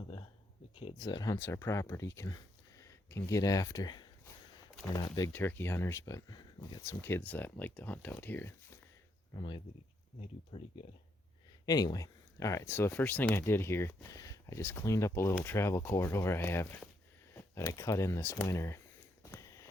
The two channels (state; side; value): normal; both; correlation 0.76